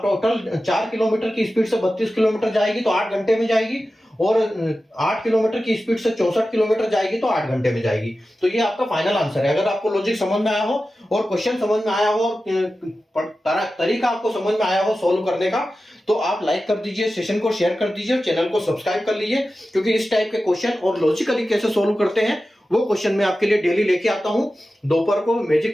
टोटल 4 किलोमीटर की स्पीड से 32 किलोमीटर जाएगी तो 8 घंटे में जाएगी, और 8 किलोमीटर की स्पीड से 64 किलोमीटर जाएगी तो 8 घंटे में जाएगी। तो ये आपका फाइनल आंसर है। अगर आपको लॉजिक समझ में आया हो और क्वेश्चन समझ में आया हो और तरीका आपको समझ में आया हो सोल्व करने का, तो आप लाइक कर दीजिए, सेशन को शेयर कर दीजिए और चैनल को सब्सक्राइब कर लीजिए, क्योंकि इस टाइप के क्वेश्चन और लॉजिकली कैसे सोल्व करते हैं वो क्वेश्चन मैं आपके लिए डेली लेके आता हूं दोपहर को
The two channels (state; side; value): normal; both; correlation 0.94